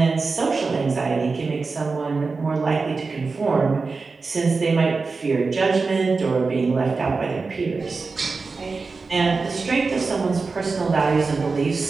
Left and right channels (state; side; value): quieter; left; 4.3 dB